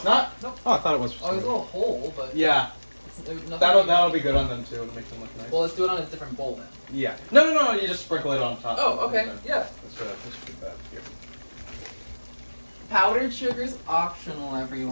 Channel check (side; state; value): both; inverted; correlation -1.00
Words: not? Nope. Oh, I thought it was. Oh, there's a little hole, but Yeah. there's nothing. That'll be good on them too. It'll make them look nice. Well, let's do it on a different bowl then. Yeah. No. You just sprinkle it on top. Oh, okay. Yeah. Let's do that here. Powdered sugar's optional,